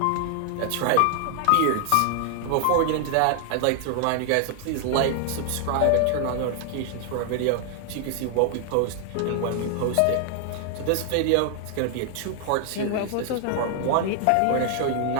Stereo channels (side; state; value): both; different; correlation 0.00